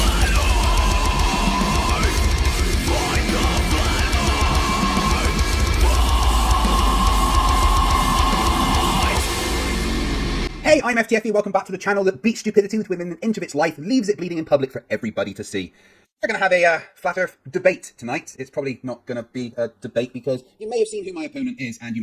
Hey, I'm FTFE, welcome back to the channel that beats stupidity within an inch of its life, leaves it bleeding in public for everybody to see. We're going to have a flat earth debate tonight. It's probably not going to be a debate because you may have seen who my opponent is and you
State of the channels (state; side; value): identical; both; correlation 1.00